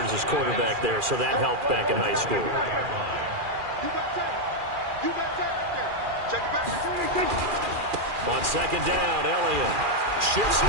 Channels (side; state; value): left; late; 2.4 ms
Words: his quarterback there, so that helped back in high school. Check it back. On 2nd down, Elliott shifts